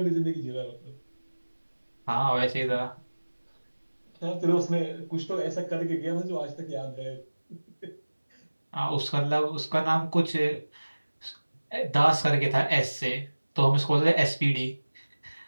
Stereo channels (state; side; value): inverted; both; correlation -1.00